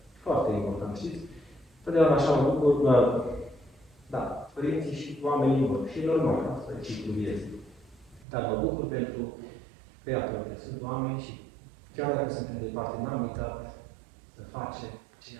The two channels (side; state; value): left; drops out; at 8.2 s